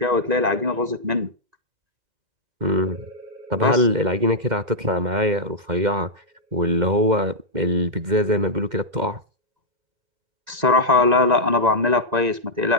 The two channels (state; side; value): late; left; 2.1 ms